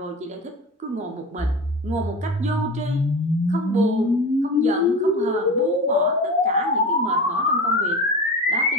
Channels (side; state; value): both; normal; correlation 0.29